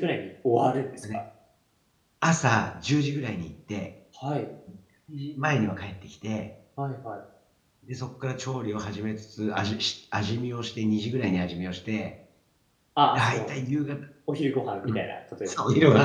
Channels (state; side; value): identical; both; correlation 1.00